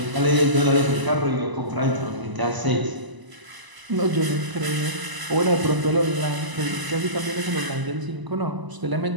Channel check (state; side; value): late; left; 1.0 ms